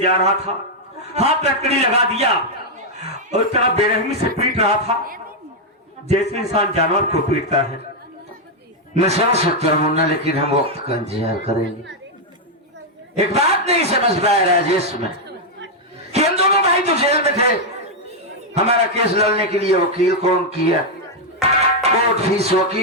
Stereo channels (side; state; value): both; normal; correlation -0.01